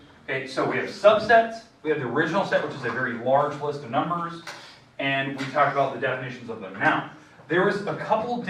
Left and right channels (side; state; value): both; identical; correlation 1.00